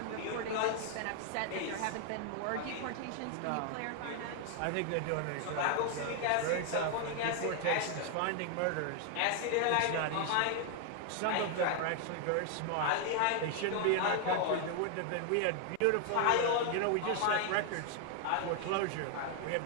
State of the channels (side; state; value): both; different; correlation 0.00